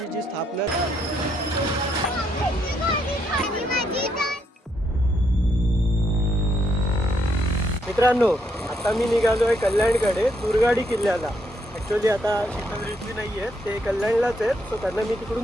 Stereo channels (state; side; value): normal; both; correlation 0.75